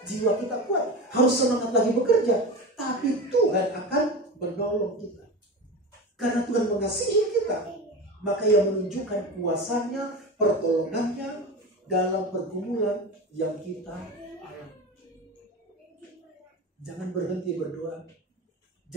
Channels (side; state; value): both; normal; correlation 0.27